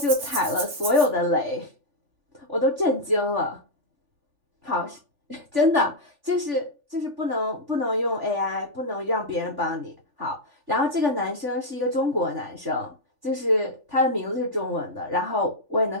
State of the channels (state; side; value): late; left; 3.4 ms